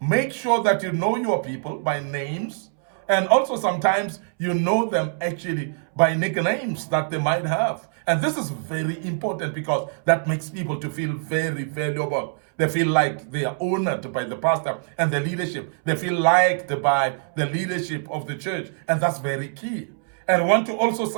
make sure that you know your people by names. And also sometimes you know them actually by nicknames that they might have. And this is very important, because that makes people to feel very valuable. They feel like they are honored by the pastor and the leadership. They feel liked by the leadership of the church. And that's very key. And I want to also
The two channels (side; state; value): left; silent; 63 dB below the other